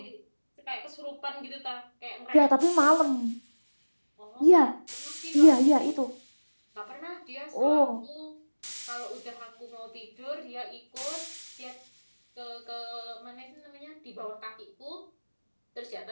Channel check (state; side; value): inverted; both; correlation -1.00